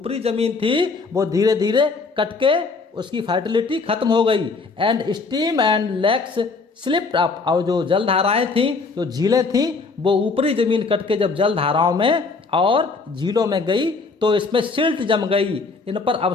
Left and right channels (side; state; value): right; quieter; 4.2 dB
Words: ज़मीन थी वो धीरे धीरे कट के उसकी फर्टिलिटी खत्म हो गई। And stream and lakes slipped up, और जो जलधाराएं थीं, जो झीलें थीं, वो ऊपरी ज़मीन कट के जब जलधाराओं में और झीलों में गई तो इसमें सिल्ट जम गई, इन पर